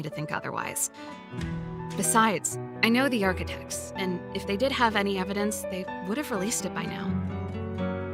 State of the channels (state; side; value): identical; both; correlation 1.00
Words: to think otherwise. Besides, I know the Architects, and if they did have any evidence, they would have released it by now.